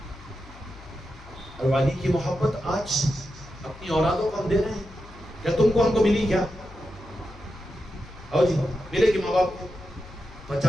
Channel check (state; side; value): noise; left; hum, 20 dB below the sound